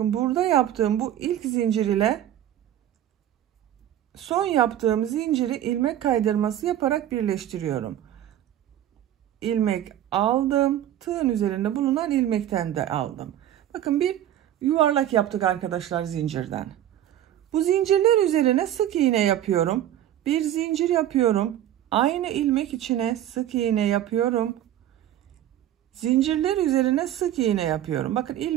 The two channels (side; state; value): left; quieter; 11.8 dB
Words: burada yaptığım bu ilk zincir ile son yaptığım zinciri ilmek kaydırması yaparak birleştiriyorum. İlmek aldım. Tığın üzerinde bulunan ilmekten de aldım. Bakın bir yuvarlak yaptık arkadaşlar zincirden. Bu zincirler üzerine sık iğne yapıyorum. Bir zincir yapıyorum. Aynı ilmek içine sık iğne yapıyorum. Zincirler üzerine sık iğne yapıyorum. Bakın